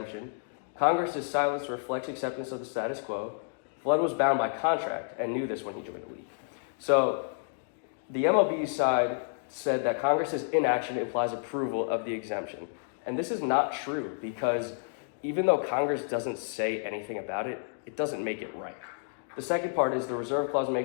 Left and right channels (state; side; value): silent; right; digital silence